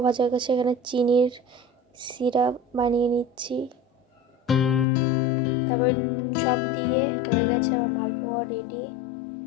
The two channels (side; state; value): right; drops out; at 4.9 s